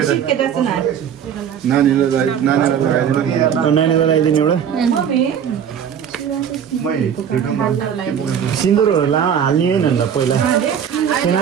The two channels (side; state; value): left; quieter; 8.4 dB